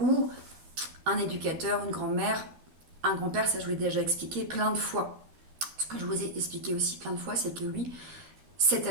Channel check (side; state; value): left; late; 12 ms